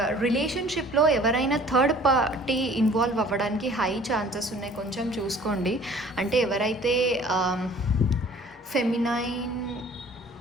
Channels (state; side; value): normal; both; correlation 0.51